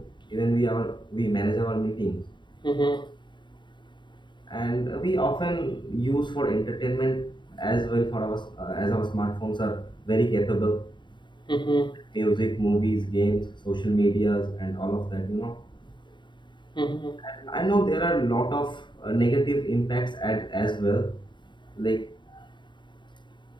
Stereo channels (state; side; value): late; right; 0.23 ms